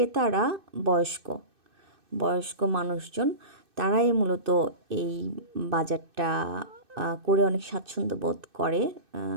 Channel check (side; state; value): left; late; 2.6 ms